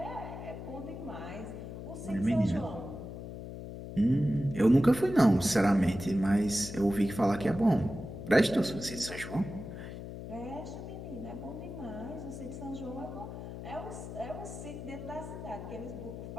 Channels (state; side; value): noise; left; hum, 9 dB below the sound